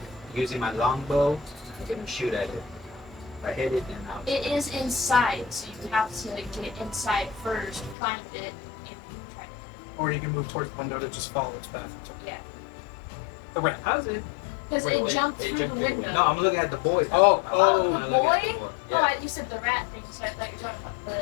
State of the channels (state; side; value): drops out; right; at 8.0 s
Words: using my longbow. I'm gonna shoot at it. If I hit it, then I'll. It is inside, so you have to get inside first, find it, and try to. Or you can move towards the window to just follow its path. Yeah. The rat. How's it? Because Wait, it wait, jumped it through jumped the through the window. No, I'm looking at the boy. Oh, Oh, I'm the looking at boy? the boy. Oh, Yeah. you said the rat thing, so I thought you were talking about